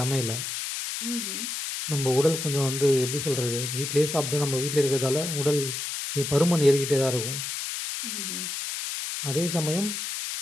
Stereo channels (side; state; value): left; noise; hiss, 4 dB below the sound